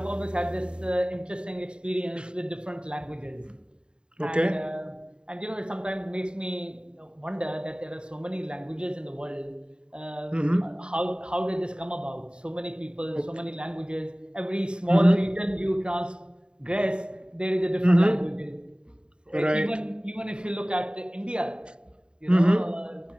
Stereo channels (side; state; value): left; late; 0.050 ms